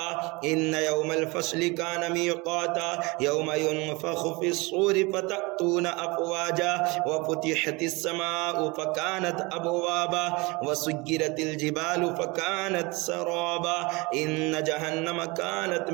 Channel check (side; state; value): left; quieter; 25.5 dB